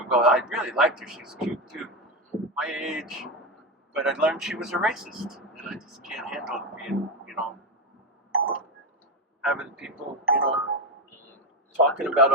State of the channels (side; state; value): both; normal; correlation 0.12